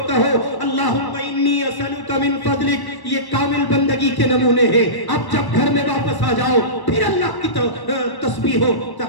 کہو اللہم انی اسألک من فضلک. یہ کامل بندگی کے نمونے ہیں. اب جب گھر میں واپس آ جاؤ پھر اللہ کی تسبیح و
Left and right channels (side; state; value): right; late; 1.1 ms